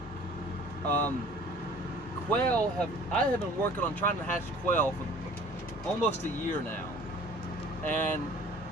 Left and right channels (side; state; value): both; normal; correlation 0.49